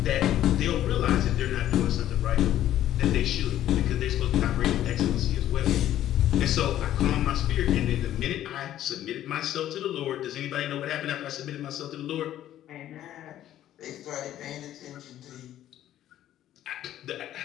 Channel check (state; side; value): quieter; right; 12.4 dB